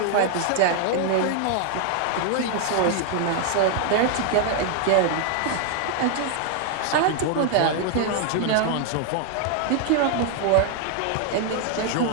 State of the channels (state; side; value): different; both; correlation 0.00